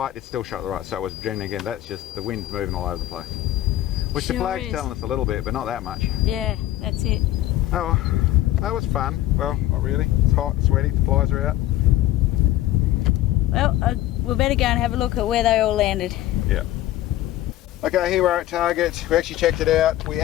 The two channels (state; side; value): quieter; right; 14.4 dB